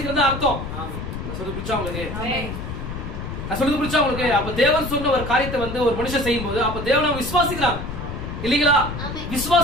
அர்த்தம். சொல்றது புரிச்சா உங்களுக்கு? நான் சொல்றது புரிச்சா உங்களுக்கு? அப்ப தேவன் சொன்ன ஒரு காரியத்தை வந்து ஒரு மனுஷன் செய்யும் போது அப்ப தேவனை விசுவாசிக்கிறான் இல்லீங்களா?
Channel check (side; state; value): left; noise; rumble, 7 dB below the sound